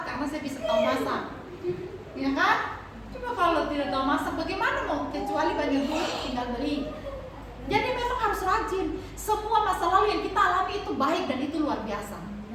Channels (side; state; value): both; identical; correlation 1.00